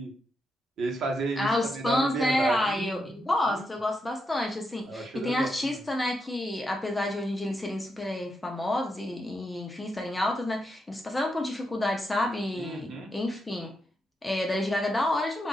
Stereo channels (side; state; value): both; normal; correlation 0.83